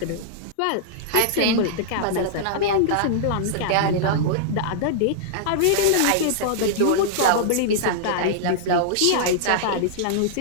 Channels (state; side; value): different; both; correlation -0.02